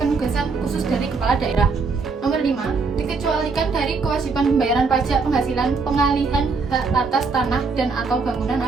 penugasan khusus dari kepala daerah. Nomor 5. Dikecualikan dari kewajiban pembayaran pajak penghasilan pengalihan hak atas tanah dan atau bangunan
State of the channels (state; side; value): quieter; left; 4.5 dB